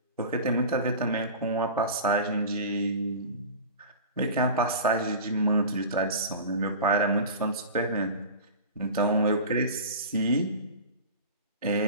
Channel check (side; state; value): both; inverted; correlation -0.34